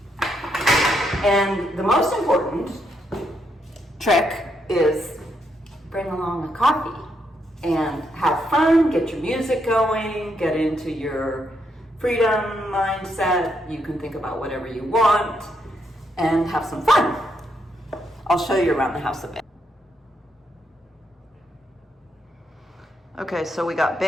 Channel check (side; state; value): both; normal; correlation 0.78